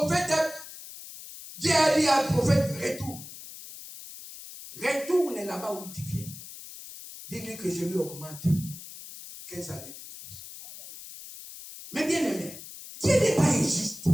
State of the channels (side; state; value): left; noise; hiss, 14 dB below the sound